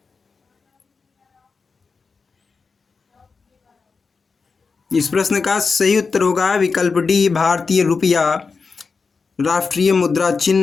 इस प्रश्न का सही उत्तर होगा विकल्प डी, भारतीय रुपया राष्ट्रीय मुद्रा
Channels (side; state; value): right; quieter; 4.8 dB